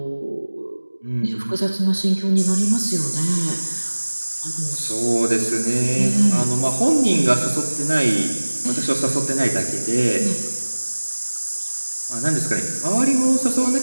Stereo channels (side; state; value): both; inverted; correlation -1.00